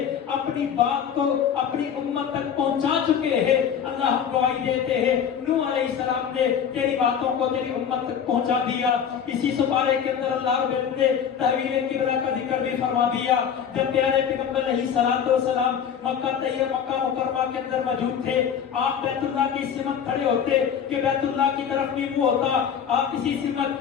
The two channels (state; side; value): quieter; right; 8.0 dB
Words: اپنی بات کو اپنی امت تک پہنچا چکے ہیں، اللہ ہم گواہی دیتے ہیں نوح علیہ السلام نے تیری باتوں کو تیری امت تک پہنچا دیا۔ اسی سپارے کے اندر اللہ رب العزت نے تحویل قبلہ کا ذکر بھی فرما دیا۔ جب پیارے پیغمبر علیہ السلام مکہ طیبہ مکہ مکرمہ کے اندر موجود تھے، آپ بیت اللہ کی سمت کھڑے ہوتے کہ بیت اللہ کی طرف بھی منہ ہوتا، آپ اسی